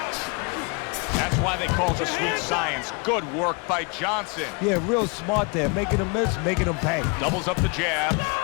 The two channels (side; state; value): right; quieter; 32.4 dB